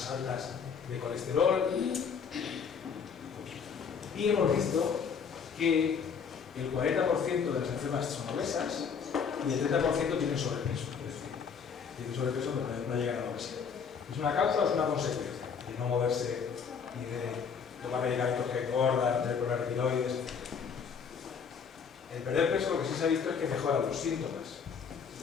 altas de colesterol. Y hemos visto que el 40% de las enfermas son obesas y el 30% tienen sobrepeso. Es decir, tienen sobrepeso pero no llegan a la obesidad. ¿Es una causa o es una consecuencia de no moverse y de tomar medicamentos que engordan, tener problemas de tiroides? El perder peso lo que sí se ha visto es que mejora los síntomas.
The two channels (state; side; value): quieter; right; 6.4 dB